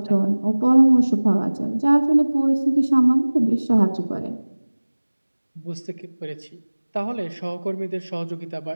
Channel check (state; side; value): inverted; both; correlation -1.00